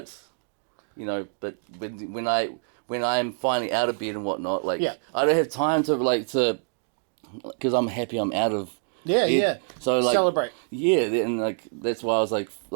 you know, but when I'm finally out of bed and whatnot, like, I don't have time to, because I'm happy I'm out of Yeah. So like celebrate. Yeah, and like that's why I was like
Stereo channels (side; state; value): left; silent; digital silence